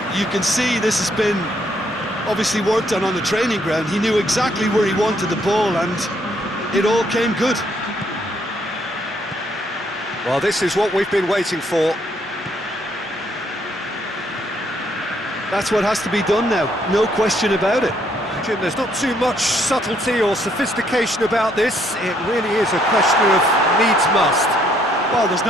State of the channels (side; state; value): both; normal; correlation 0.69